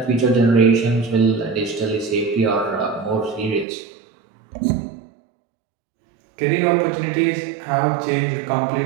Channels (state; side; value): drops out; left; at 3.7 s